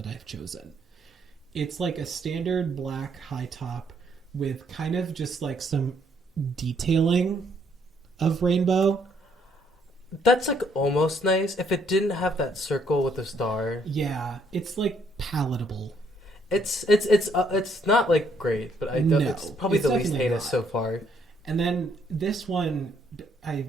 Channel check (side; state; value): both; normal; correlation 0.69